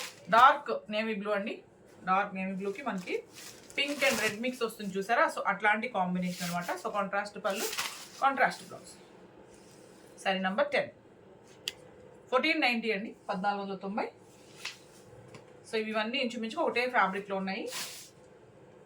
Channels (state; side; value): identical; both; correlation 1.00